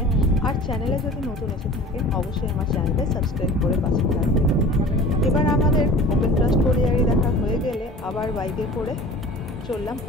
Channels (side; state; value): both; normal; correlation 0.41